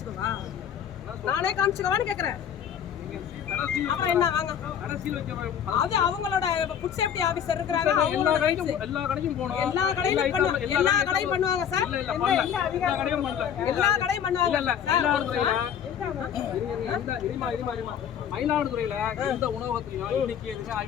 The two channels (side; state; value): right; quieter; 8.7 dB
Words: நானே காமிச்சுக்கவான்னு கேக்குறேன். அப்புறம் என்ன வாங்க, அது அவங்களோட ஃபுட் சேஃப்டி ஆபீசர் இருக்காங்க. எல்லா கடையும் போணும், எல்லா கடையும் பண்ணுவாங்க சார். எல்லா கடையும் பண்ணுவாங்க. மயிலாடுதுறையில எந்த உணவகத்திலையும் இன்னைக்கு எதுவுமே